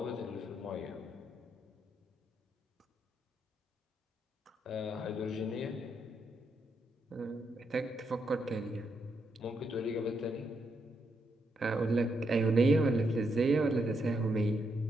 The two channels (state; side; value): normal; both; correlation 0.79